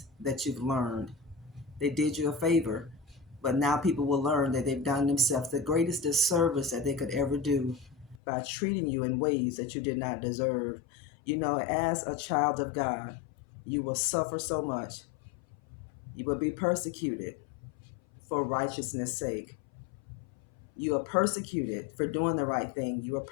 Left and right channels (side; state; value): right; drops out; at 8.2 s